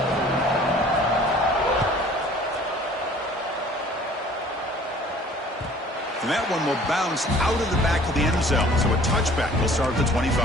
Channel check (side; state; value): both; normal; correlation 0.51